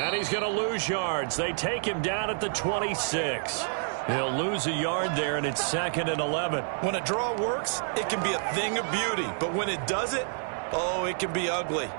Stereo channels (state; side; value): silent; left; digital silence